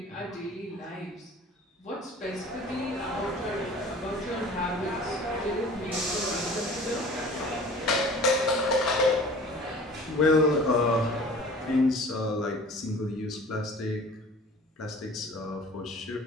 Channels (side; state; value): both; normal; correlation 0.44